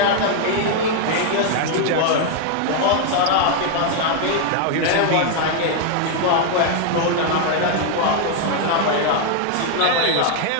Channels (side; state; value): both; different; correlation 0.00